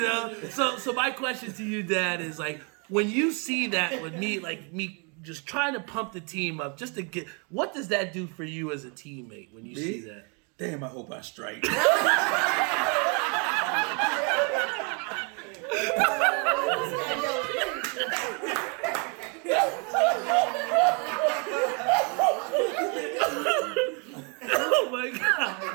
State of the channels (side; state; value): left; quieter; 35.4 dB